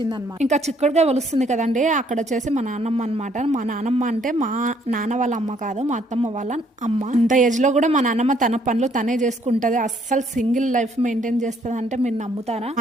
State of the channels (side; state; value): both; normal; correlation 0.66